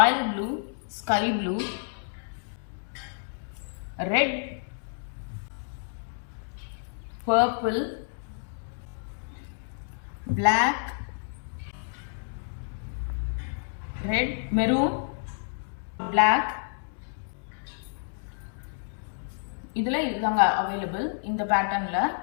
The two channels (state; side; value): silent; right; digital silence